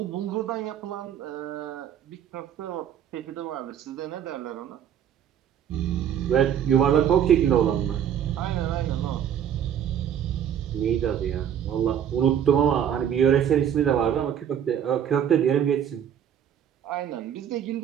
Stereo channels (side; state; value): left; quieter; 9.3 dB